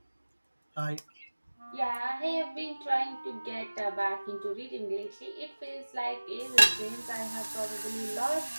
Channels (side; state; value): both; inverted; correlation -1.00